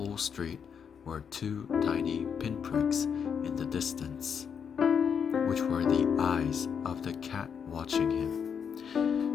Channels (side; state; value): right; quieter; 7.1 dB